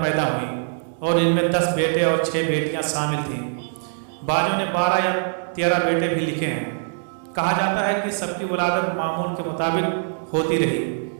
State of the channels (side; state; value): left; silent; digital silence